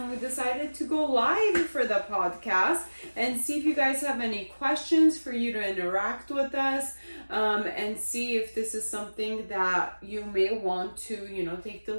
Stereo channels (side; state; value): both; inverted; correlation -1.00